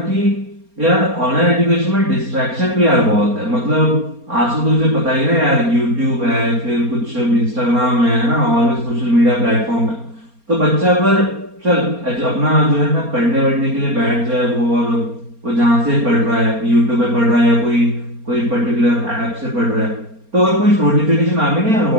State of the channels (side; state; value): left; late; 4.3 ms